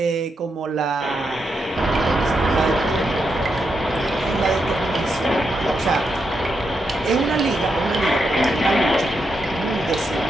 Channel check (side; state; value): both; normal; correlation 0.83